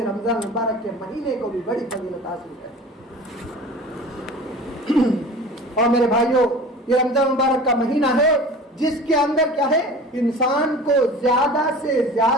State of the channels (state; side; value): normal; both; correlation 0.39